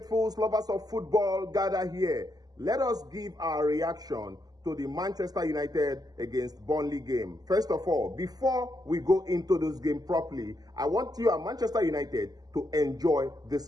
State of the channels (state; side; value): late; left; 0.19 ms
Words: lovers of football, gather here. Let us give our reaction to the Manchester United against Burnley game. First of all, before we go into this game properly, I want you at Manchester United to enjoy